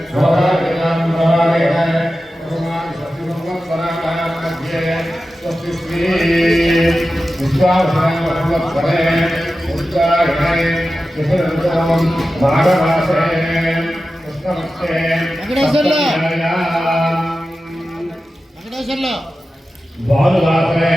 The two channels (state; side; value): normal; both; correlation 0.93